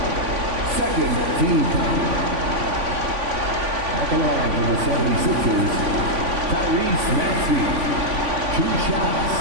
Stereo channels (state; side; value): late; left; 3.5 ms